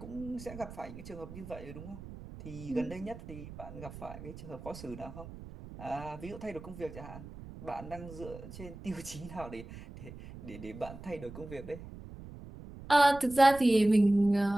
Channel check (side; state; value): right; noise; rumble, 14 dB below the sound